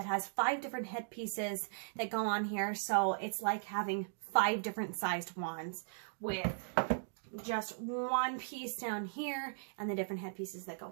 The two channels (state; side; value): silent; left; digital silence